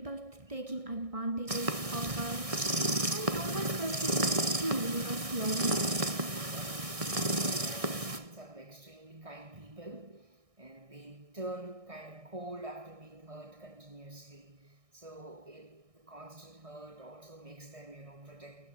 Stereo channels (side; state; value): left; late; 1.6 ms